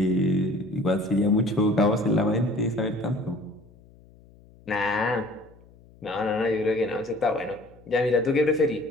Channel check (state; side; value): noise; left; hum, 26 dB below the sound